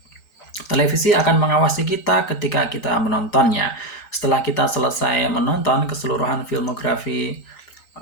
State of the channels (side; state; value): right; late; 3.9 ms